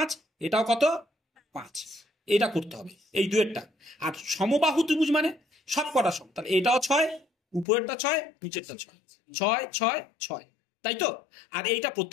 এটাও কত? 5। এটা করতে হবে এই দুয়েরটা। আর সমবাহু ত্রিভুজ মানে সব কটা সম, তাহলে এটাও 6, উপরেরটা 6 নিচেরটা 6, 6 6 6, তাই তো। আর এইটা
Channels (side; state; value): right; drops out; at 7.7 s